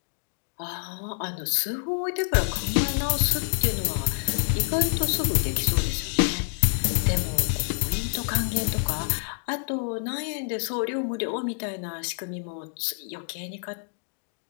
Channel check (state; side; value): silent; right; 60 dB below the other